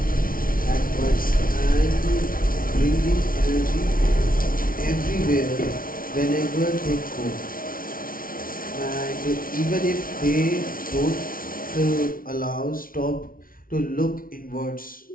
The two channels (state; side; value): late; right; 0.42 ms